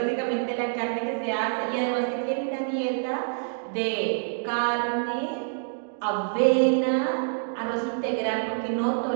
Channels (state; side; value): silent; left; digital silence